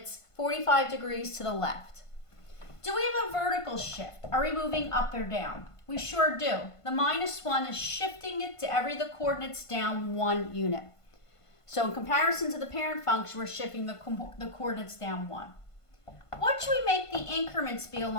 45 degrees to the left. Do we have a vertical shift? Are we moving up or down? We sure do. The minus 1 is shifting it to every the coordinates down 1 unit. So in comparison to the parent function, we're shifting the coordinates down 1. What should we make the increments be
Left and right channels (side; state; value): right; late; 1.5 ms